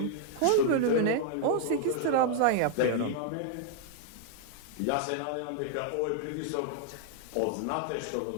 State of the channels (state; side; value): different; both; correlation 0.00